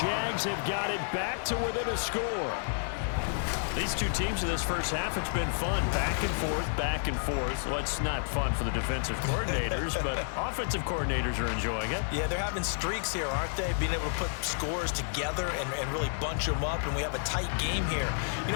have got it back to within a score. These two teams in this first half, it's been fun. Back and forth, back and forth. Well, it's not fun for the defensive coordinators, but offensive coordinators are enjoying it. Yeah, they're having streaks here, aren't they? Being able to put scores together and really bunch them up, and we have a tight game here. You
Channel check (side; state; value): right; silent; 57 dB below the other